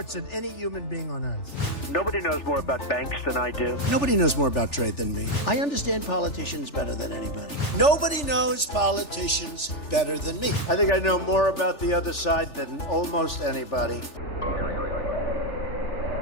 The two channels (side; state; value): right; late; 3.4 ms